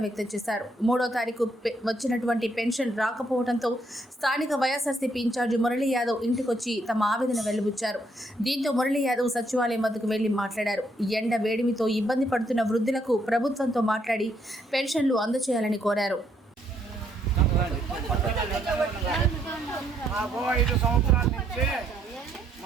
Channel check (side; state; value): both; normal; correlation 0.72